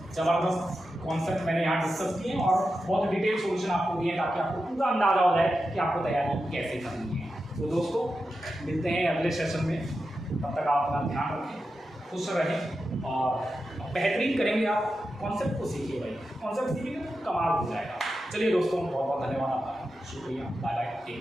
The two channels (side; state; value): both; normal; correlation 0.90